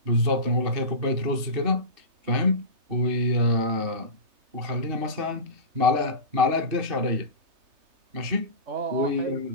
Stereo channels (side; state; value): left; late; 3.3 ms